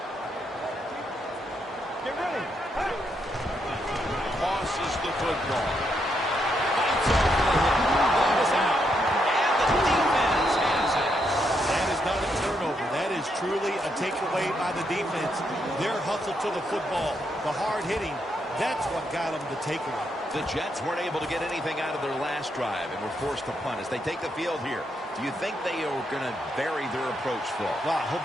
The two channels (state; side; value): normal; both; correlation 0.79